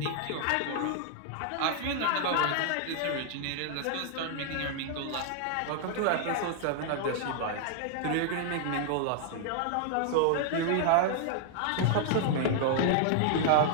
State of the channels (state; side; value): different; both; correlation 0.00